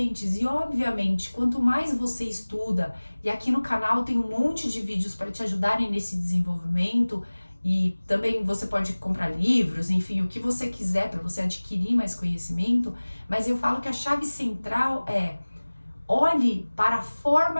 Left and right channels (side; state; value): both; inverted; correlation -1.00